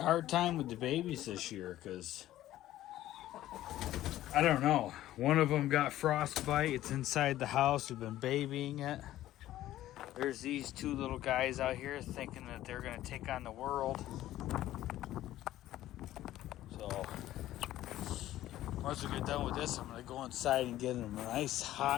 hard time with the babies this year because, I don't know, one of them got frostbite. It's inside the house. We've been babying it. There's these two little guys out here thinking that they're going to take on the world. So, once we get done with this, I'm going to go inside and get them a nice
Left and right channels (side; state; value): right; quieter; 14.1 dB